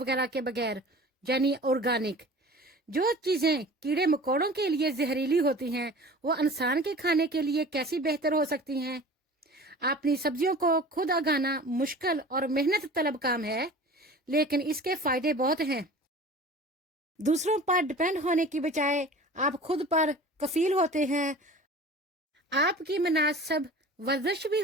के बगैर, यानी ऑर्गेनिक। जो चीजें कीड़े मकोड़ों के लिए जहरीली होती हैं वो इंसान के खाने के लिए कैसी बेहतर हो सकती हैं। अपनी सब्जियों को खुद उगाना मुश्किल और मेहनत तलब काम है, लेकिन इसके फायदे बहुत हैं। दूसरों पर डिपेंड होने की बजाय आप खुद पर कफील होते हैं। आपकी मुनासिब वर्जिश भी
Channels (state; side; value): normal; both; correlation 0.41